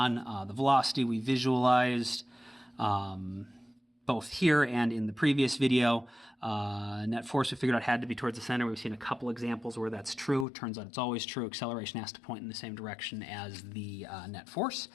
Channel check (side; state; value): right; drops out; at 10.5 s